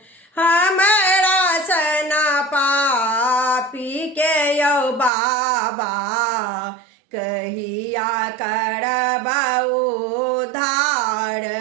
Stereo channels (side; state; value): left; drops out; at 5.1 s